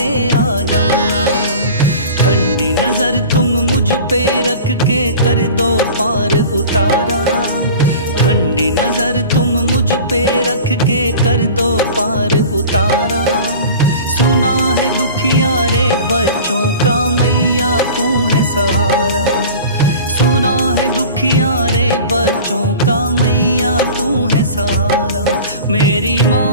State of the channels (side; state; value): both; inverted; correlation -0.39